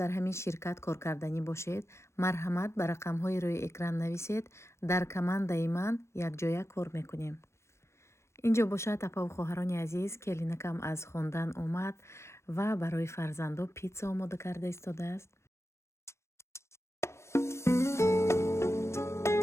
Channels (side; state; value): right; late; 0.13 ms